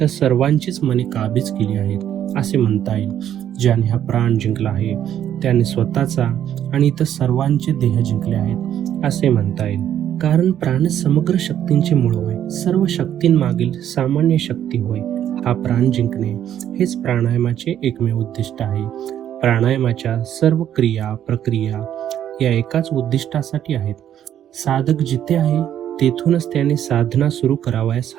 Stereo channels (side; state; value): left; quieter; 10.5 dB